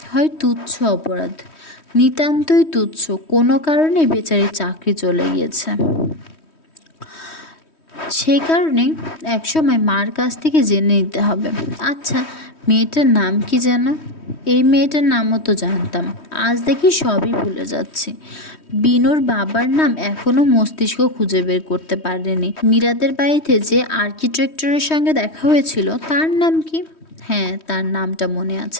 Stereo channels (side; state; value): right; late; 3.1 ms